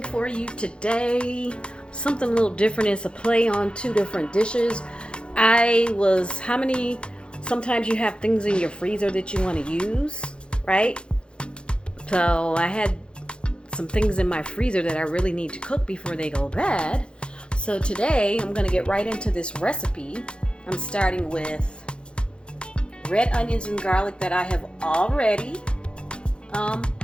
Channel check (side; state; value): right; late; 0.055 ms